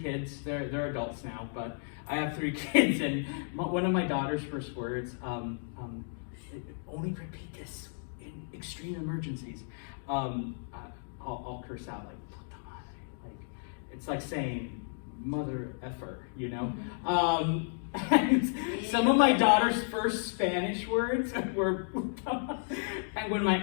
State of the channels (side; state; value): right; silent; digital silence